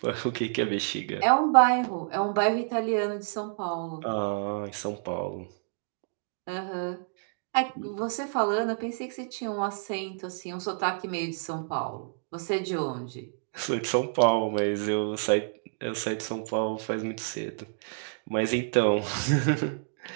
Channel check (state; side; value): silent; left; digital silence